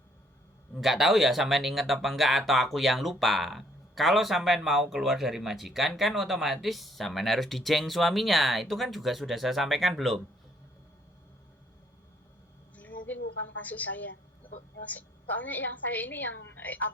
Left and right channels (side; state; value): both; normal; correlation 0.66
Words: nggak tahu ya sampean inget apa enggak atau aku yang lupa. Kalau sampean mau keluar dari majikan kan otomatis sampean harus dijeng suaminya. Itu kan juga sudah saya sampaikan belum? Mungkin bukan kasus saya. Soalnya yang saya ini yang